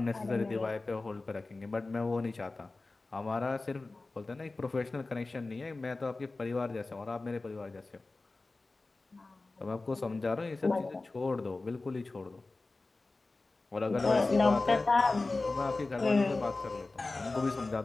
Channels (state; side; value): quieter; right; 3.4 dB